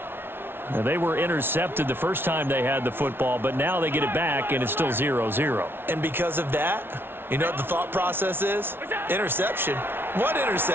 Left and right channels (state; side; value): late; left; 0.11 ms